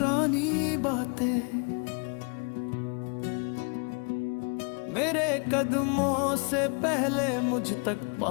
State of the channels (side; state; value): right; quieter; 36.1 dB